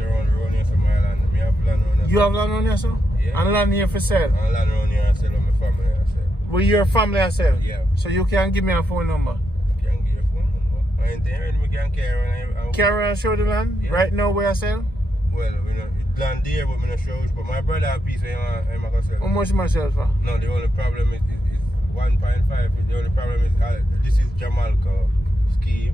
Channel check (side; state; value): both; normal; correlation 0.83